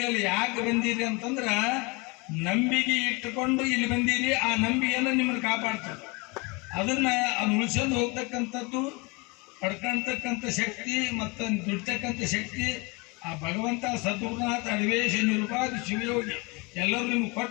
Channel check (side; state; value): right; quieter; 27.9 dB